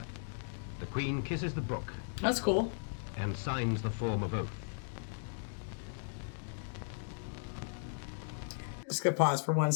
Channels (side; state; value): right; silent; digital silence